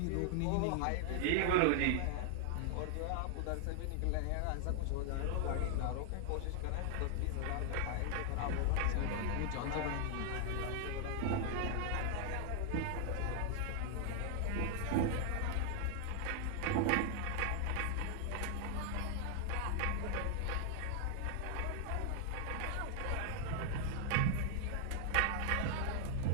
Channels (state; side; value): different; both; correlation 0.00